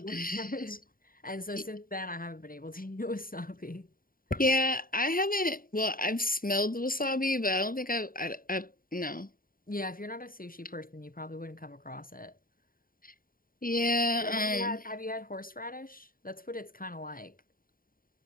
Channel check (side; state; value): right; late; 0.41 ms